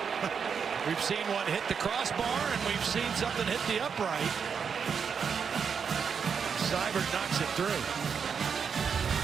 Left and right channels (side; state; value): left; quieter; 6.5 dB